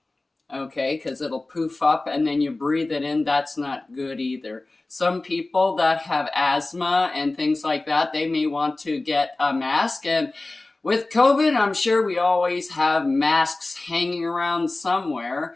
okay, because it'll poof up and then you breathe it in. That's not good either. Some people that have asthma and things like that, they may want to get a mask, and With COVID, I'm sure we always have masks hanging around somewhere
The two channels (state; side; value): quieter; right; 3.0 dB